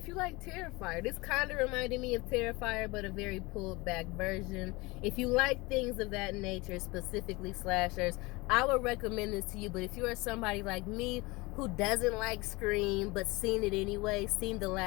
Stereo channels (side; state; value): right; quieter; 23.7 dB